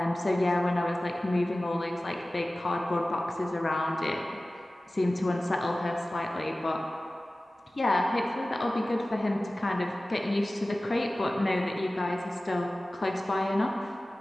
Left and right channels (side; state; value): both; normal; correlation 0.97